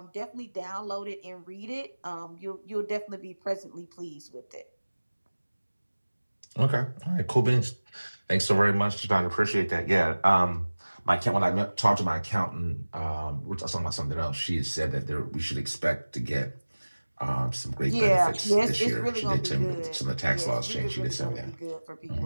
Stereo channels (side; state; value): both; inverted; correlation -1.00